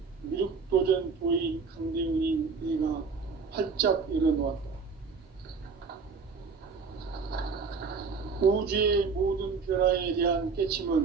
미륵도전 도인 강대훈인 내가 활짝 열어놓았다. 우주의 모든 변화에 대한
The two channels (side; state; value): left; quieter; 5.1 dB